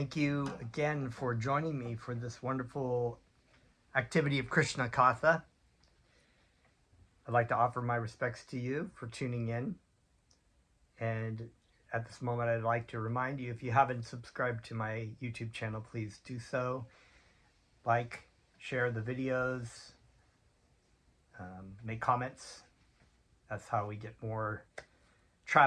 you again for joining me for this wonderful activity of Krishna Katha. I'd like to offer my respects to you for tuning in. And at this moment, I'd like to remind you, if you haven't subscribed to my YouTube channel, please do so. Like, share the videos, make comments. That's how we get more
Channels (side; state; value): both; identical; correlation 1.00